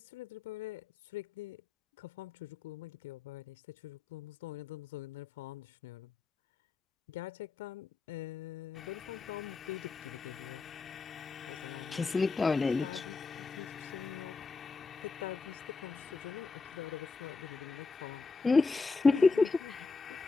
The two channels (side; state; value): right; quieter; 4.2 dB